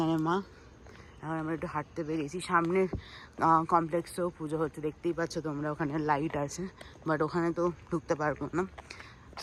মা, এখন আমরা একটু হাঁটতে বেরিয়েছি, সামনের কমপ্লেক্সেও পুজো হচ্ছে, দেখতেই পাচ্ছ তোমরা, ওখানে লাইট আছে, বাট ওখানে তো ঢুকতে পারবো না।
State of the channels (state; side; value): identical; both; correlation 1.00